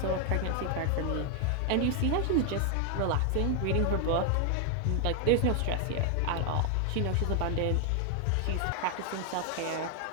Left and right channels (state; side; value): different; both; correlation 0.00